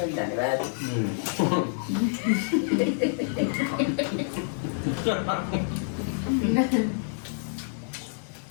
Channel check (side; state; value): right; silent; digital silence